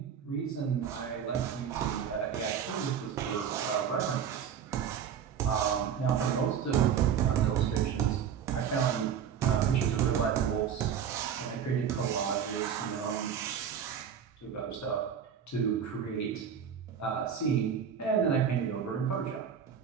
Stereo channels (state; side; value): quieter; left; 8.0 dB